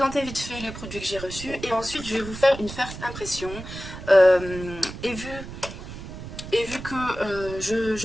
vite fait les produits que j'ai reçus et ensuite je vais vous faire une first impression. Et vu que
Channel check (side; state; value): right; noise; rumble, 11 dB below the sound